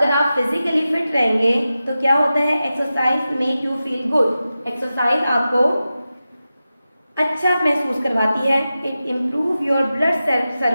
आप फिजिकली फिट रहेंगे तो क्या होता है, exercise make you feel good. Exercise आपको अच्छा महसूस करवाती है। It improve your blood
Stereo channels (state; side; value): inverted; both; correlation -0.93